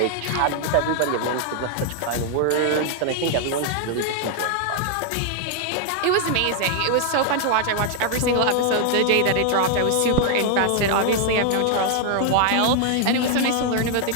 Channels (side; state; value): both; different; correlation 0.00